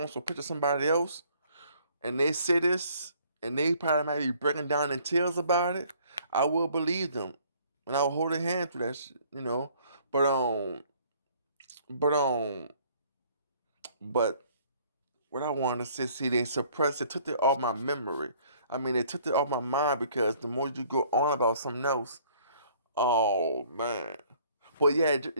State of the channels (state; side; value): inverted; both; correlation -0.59